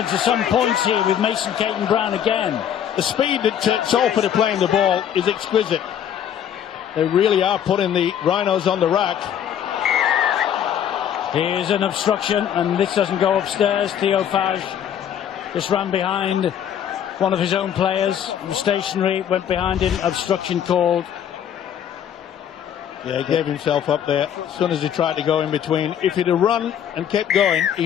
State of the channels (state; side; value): quieter; right; 9.5 dB